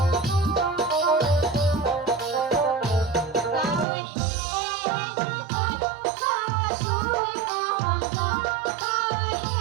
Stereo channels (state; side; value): drops out; left; at 3.9 s